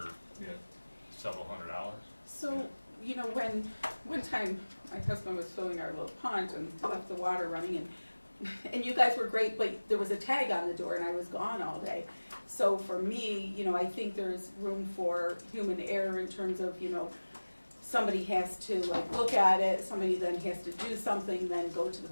several $100s. So, you know, when, one time, my husband was filling our little pond and left the water running, and you guys were great, but there was a tag on the door and I was gone all day. So for me, you know, I think there's room for human error in terms of, you know, somebody has to like look at it, somebody then has to do something, then go to the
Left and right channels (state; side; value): inverted; both; correlation -1.00